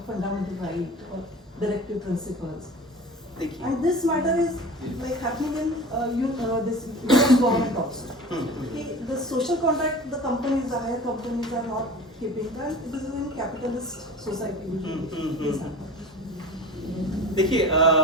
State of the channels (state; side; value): normal; both; correlation 0.37